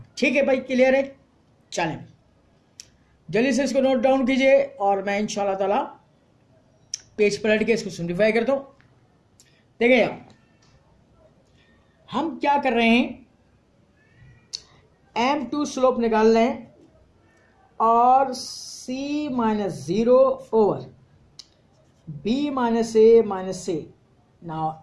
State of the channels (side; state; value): both; identical; correlation 1.00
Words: ठीक है भाई, क्लियर है। चलें जल्दी से इसको नोट डाउन कीजिए और मैं इंशाल्लाह ताला पेज पलट के इसको सिंप्लीफाई करता हूं। देखिए हम क्या कर रहे हैं, M2 स्लोप निकाल रहे हैं और C minus 0 over B minus A minus A. Now